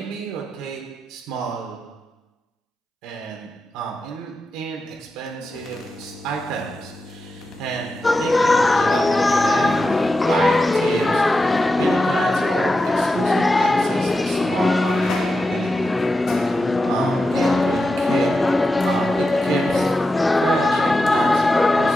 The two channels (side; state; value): both; normal; correlation 0.90